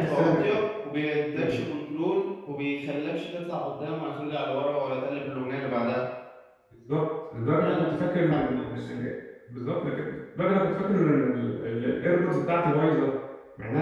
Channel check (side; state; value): both; identical; correlation 1.00